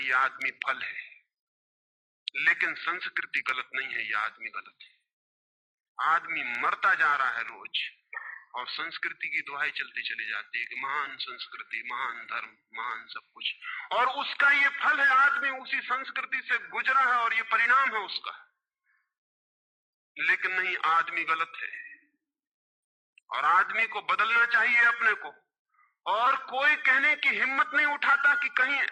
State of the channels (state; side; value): identical; both; correlation 1.00